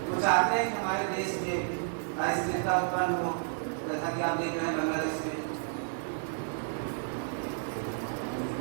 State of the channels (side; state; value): left; silent; 57 dB below the other